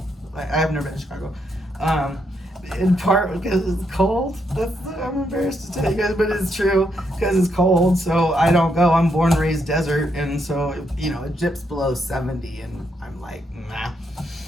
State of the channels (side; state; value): both; normal; correlation 0.78